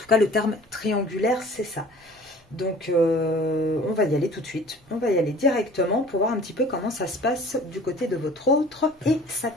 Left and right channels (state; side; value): normal; both; correlation 0.47